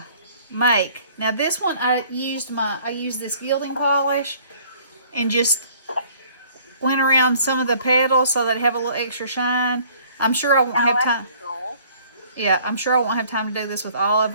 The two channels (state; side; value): inverted; both; correlation -0.56